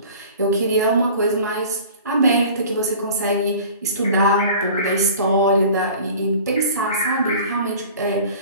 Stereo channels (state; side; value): inverted; both; correlation -0.43